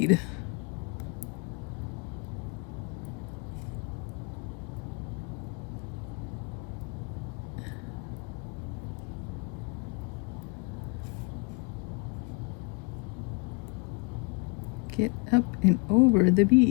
Get up and over the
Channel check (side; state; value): right; quieter; 30.4 dB